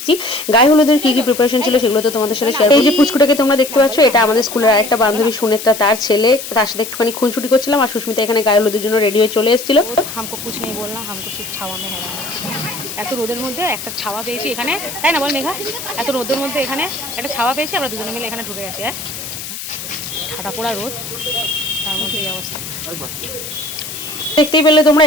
গায়ে হলুদের কি কি প্রিপারেশন ছিল সেগুলো তো তোমাদের সাথে শেয়ার। এই যে পুচকুটাকে তোমরা দেখতে পাচ্ছ, এটা আমাদের স্কুলের আরেকটা বান্ধবী সুনেত্রা, তার ছেলে। তার সাথে একটুখানি খুনসুটি করছিলাম আর সুস্মিতা এখানে গায়ে হলুদের জন্য রেডি হয়ে চলে এসেছিল। हमको कुछ नहीं बोलना, हमको सिर्फ ছাওয়া में হেরানা। এত রোদের মধ্যে একটা ছাওয়া পেয়েছি এখানে, তাই না বল মেঘা? এত রোদের মধ্যে এখানে একটা ছাওয়া পেয়েছি, আমরা দুজনে মিলে এখানে ঢুকে গেছি। হ্যাঁ, ঠাটা পোড়া রোদ, তার মধ্যে এই অবস্থা। দেখতেই পেলে তোমরা,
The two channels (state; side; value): noise; left; hiss, 9 dB below the sound